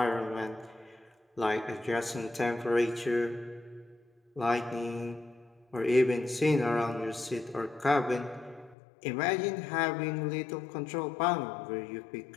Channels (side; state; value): right; drops out; at 8.8 s